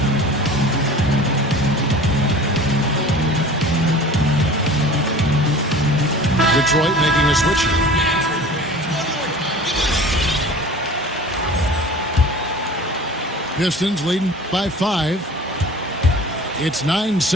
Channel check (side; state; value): both; normal; correlation 0.41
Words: Detroit making a switch. Pistons leading by 5. It's 9